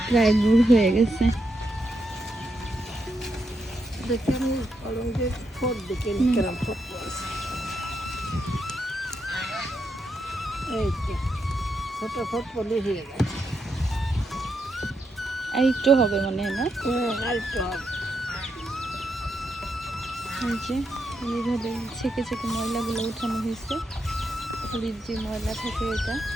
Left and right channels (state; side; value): normal; both; correlation 0.82